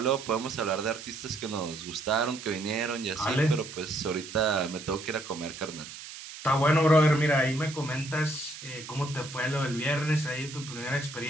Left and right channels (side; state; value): right; noise; hiss, 13 dB below the sound